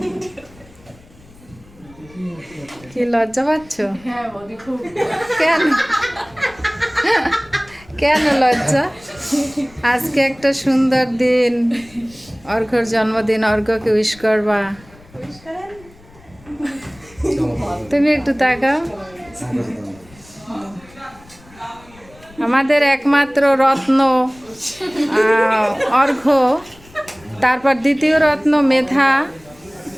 কি লজ্জা পাচ্ছ? কেন কেন লজ্জা? আজকে একটা সুন্দর দিন, অর্ঘ্যর জন্মদিন, অর্ঘ্যকে উইশ করবা। তুমি একটু তাকাও। আমাদের একমাত্র রত্ন অর্ঘ্য, তারপর দ্বিতীয় রত্ন মেধা,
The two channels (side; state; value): left; noise; rumble, 25 dB below the sound